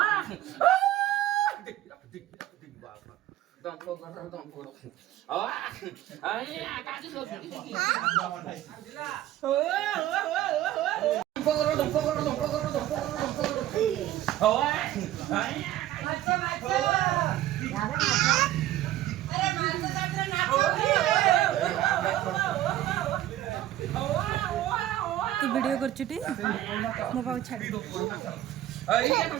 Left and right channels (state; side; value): quieter; left; 13.6 dB